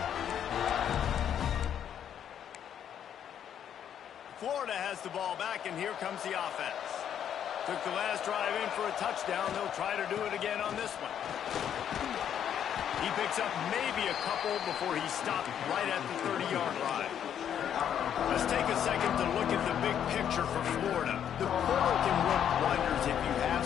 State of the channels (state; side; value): quieter; right; 9.3 dB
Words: Florida has the ball back, and here comes the offense. Took the last drive in for a touchdown. They'll try to do it again on this one. He picks up maybe a couple before he stopped right at the 30-yard line. Let's take a second to look at the big picture for Florida. The portal can work wonders if you have